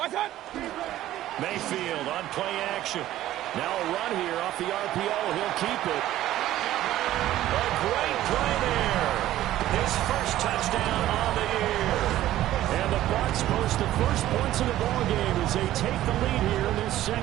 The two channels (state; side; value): quieter; left; 14.0 dB